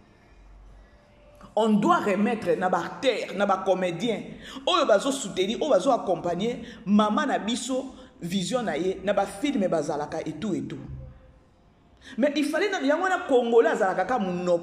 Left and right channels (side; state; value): both; identical; correlation 1.00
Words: On doit remettre na ba terre, na ba comédien. Oyo bazo soutenir, oyo bazo accompagner maman na biso vision na ye, na ba film bazalaka et tout et tout. Mais il fallait que les Congolais azalaka